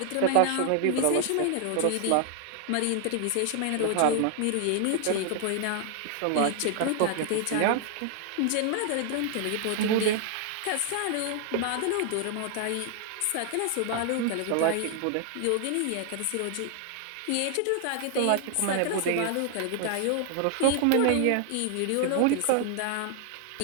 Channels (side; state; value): both; different; correlation 0.00